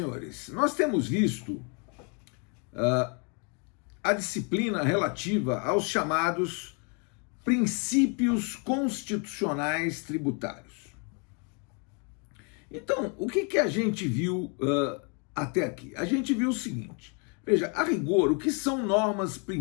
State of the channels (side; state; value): right; quieter; 36.1 dB